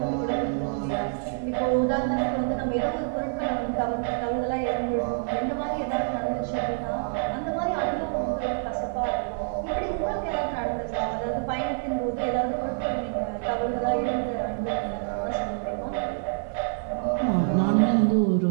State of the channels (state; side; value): silent; left; digital silence